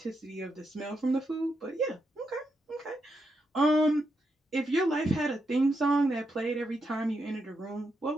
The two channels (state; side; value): normal; both; correlation 0.82